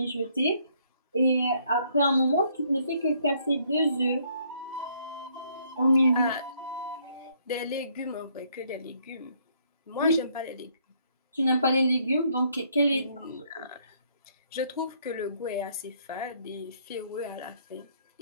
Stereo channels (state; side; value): inverted; both; correlation -0.67